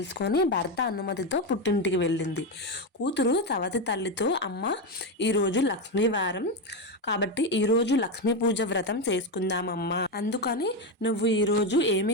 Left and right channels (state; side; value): normal; both; correlation 0.11